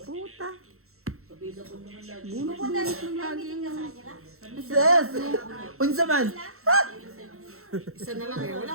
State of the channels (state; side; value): late; left; 0.63 ms